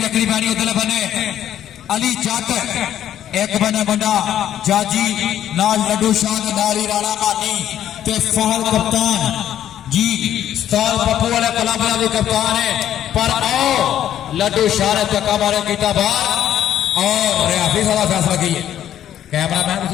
वेखनी पैनी उधर बने अली जट एक बने बंदा जाजी नाल लड्डू शाह नारी राणा मानी ते फहल कप्तान जी उस्ताद पप्पू वाले कलाबरा भी कप्तान है पर आओ लड्डू शाह ने चक्का मारे कीता बाहर और रियाफी साला फैसला की कैमरा मैन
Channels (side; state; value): right; quieter; 11.0 dB